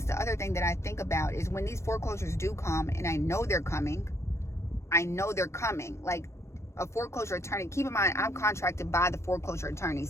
the other thing that I think about is when these foreclosures do come, and I know they're coming, like a foreclosure attorney. Keep in mind, I'm contracted by the foreclosure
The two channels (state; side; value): late; right; 0.13 ms